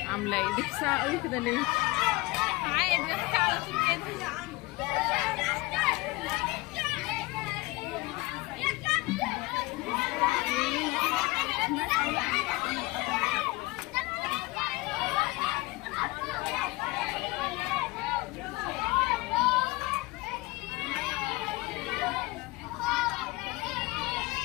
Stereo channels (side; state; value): right; quieter; 21.9 dB